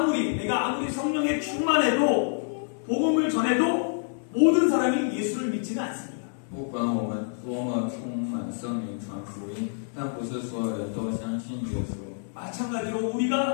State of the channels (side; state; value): right; silent; digital silence